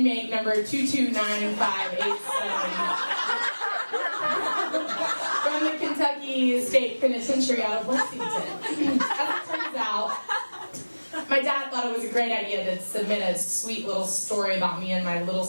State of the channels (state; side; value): inverted; both; correlation -1.00